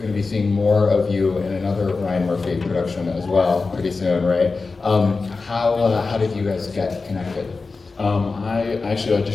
to be seeing more of you in another Ryan Murphy production as well pretty soon, right? How did you guys get connected? I actually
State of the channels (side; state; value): right; quieter; 4.1 dB